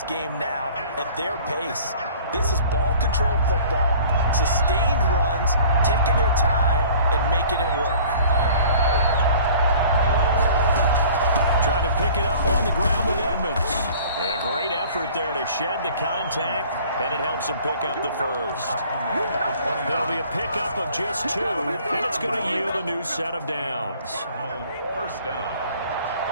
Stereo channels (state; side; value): inverted; both; correlation -0.50